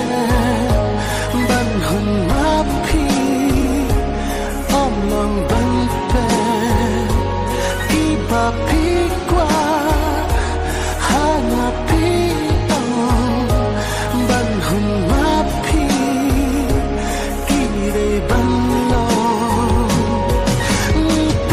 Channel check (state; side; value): identical; both; correlation 1.00